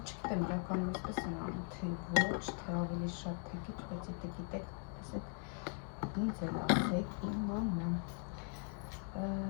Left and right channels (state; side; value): quieter; right; 34.2 dB